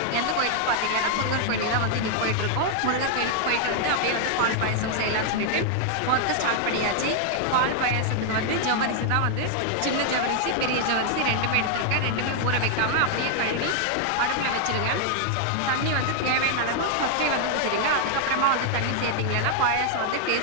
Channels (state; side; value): different; both; correlation 0.00